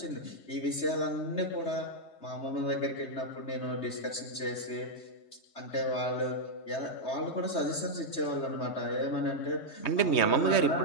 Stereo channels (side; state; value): right; late; 3.2 ms